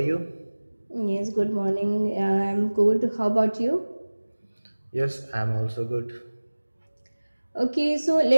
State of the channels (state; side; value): inverted; both; correlation -1.00